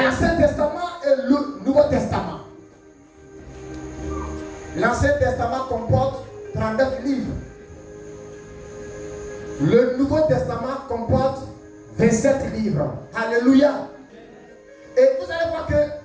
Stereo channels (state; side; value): identical; both; correlation 1.00